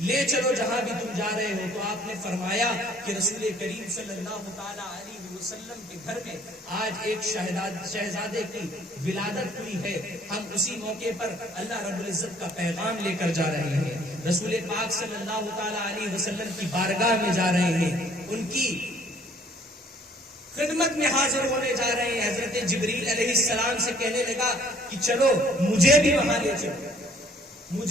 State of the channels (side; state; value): both; normal; correlation 0.58